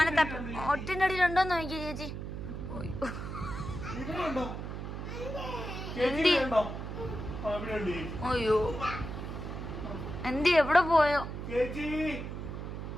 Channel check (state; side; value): noise; right; hum, 6 dB below the sound